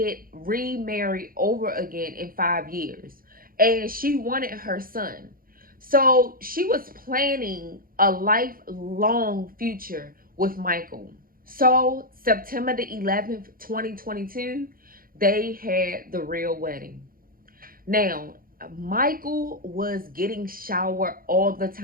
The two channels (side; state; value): left; late; 0.42 ms